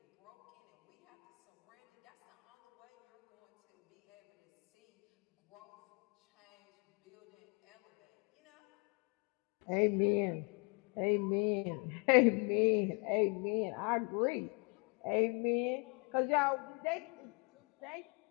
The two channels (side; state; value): right; quieter; 33.3 dB